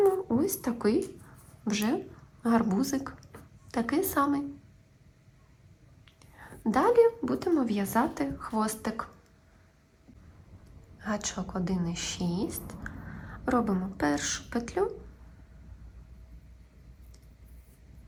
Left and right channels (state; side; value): identical; both; correlation 1.00